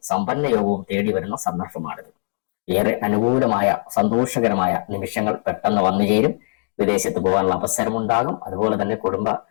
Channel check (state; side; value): silent; right; digital silence